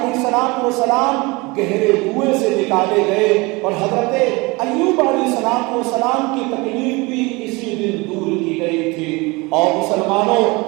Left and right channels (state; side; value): quieter; left; 25.1 dB